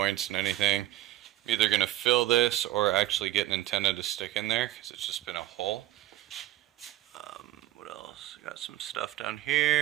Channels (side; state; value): left; quieter; 14.9 dB